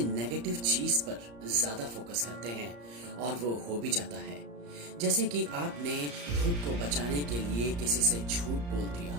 नेगेटिव चीज पर ज्यादा फोकस करते हैं और वो हो भी जाता है। जैसे कि आपने खुद को बचाने के लिए किसी से झूठ बोल दिया।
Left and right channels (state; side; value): late; left; 34 ms